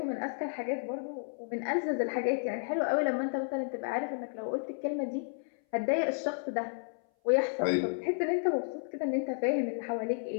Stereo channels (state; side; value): silent; right; 56 dB below the other